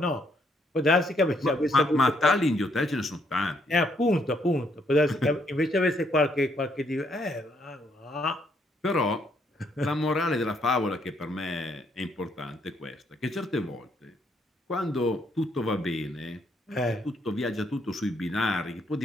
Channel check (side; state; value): both; normal; correlation 0.72